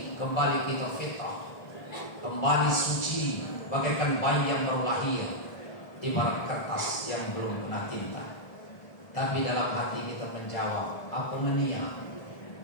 kembali kita fitrah, kembali suci, bagaikan bayi yang baru lahir, ibarat kertas yang belum kena tinta. Tapi dalam hati kita menjawab, apa menia?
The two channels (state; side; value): late; right; 1.6 ms